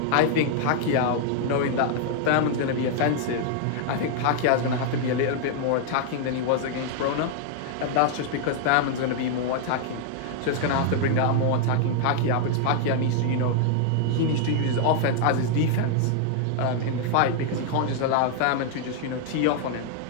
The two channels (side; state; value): both; different; correlation 0.00